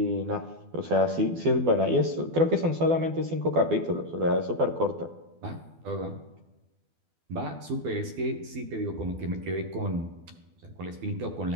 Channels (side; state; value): left; late; 12 ms